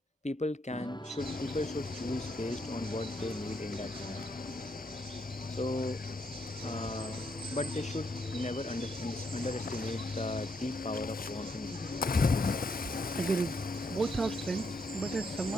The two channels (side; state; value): both; normal; correlation 0.75